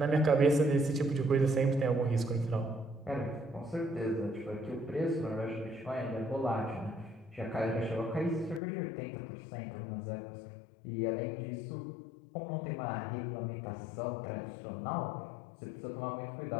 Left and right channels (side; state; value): right; drops out; at 8.6 s